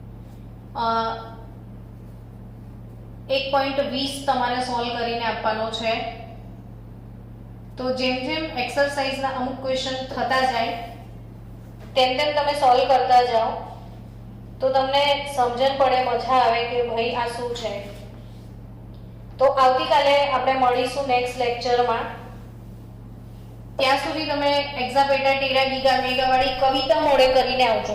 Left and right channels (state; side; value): identical; both; correlation 1.00